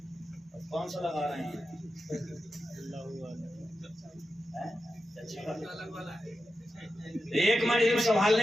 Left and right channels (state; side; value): normal; both; correlation 0.90